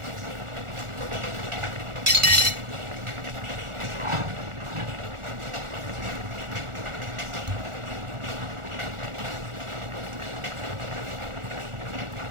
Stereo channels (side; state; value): left; late; 1.4 ms